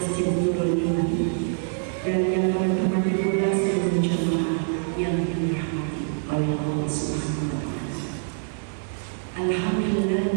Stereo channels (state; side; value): silent; left; 62 dB below the other